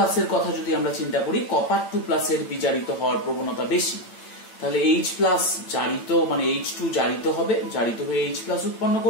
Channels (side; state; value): right; late; 8.9 ms